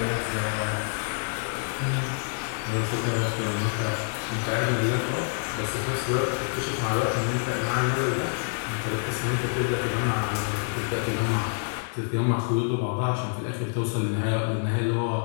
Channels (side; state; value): right; silent; digital silence